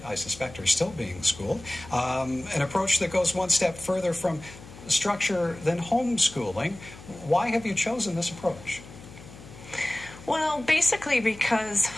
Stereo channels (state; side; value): noise; left; hum, 18 dB below the sound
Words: suspect, are still being schooled. An approach that goes one step further from structure than homeschooling. Why have you chosen this approach? Well, basically because